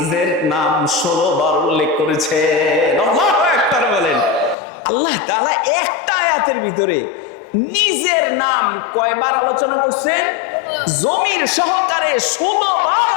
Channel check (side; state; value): right; drops out; at 4.5 s